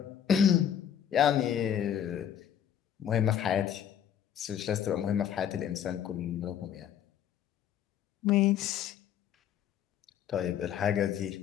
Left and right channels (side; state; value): right; quieter; 9.5 dB